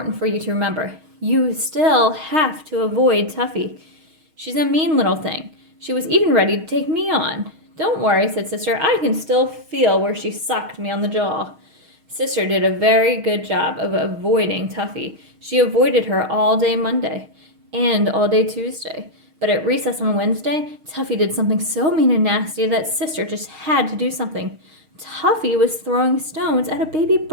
for you to remember. You still have to avoid Tuffy. She's a mean little thing. She was even ready to take me on." "Don't worry," said Sister. "I can still feel where she socked me on the jaw." Sister did a very good job of avoiding Tuffy. She avoided her all day Monday and all day Tuesday. But at recess on Wednesday, Tuffy did something so mean and nasty that Sister just had to do something. Tuffy was throwing stones at a baby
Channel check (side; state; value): left; late; 6.4 ms